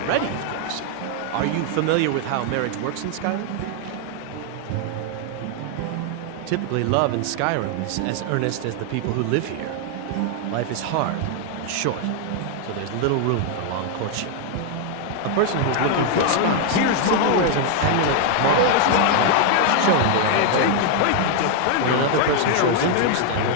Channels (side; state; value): both; different; correlation 0.00